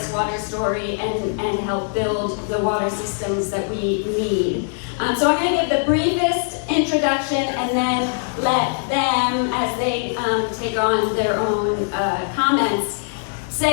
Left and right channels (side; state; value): right; silent; digital silence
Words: water story and help build the water systems that we need. So I'm going to give the briefest introduction and then let them, as they take on their own comments,